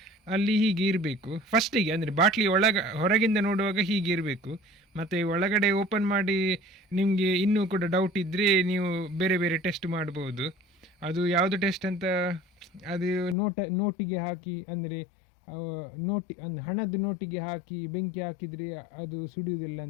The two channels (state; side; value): drops out; right; at 13.4 s